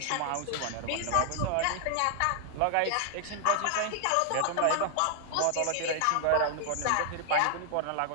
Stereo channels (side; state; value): both; different; correlation 0.00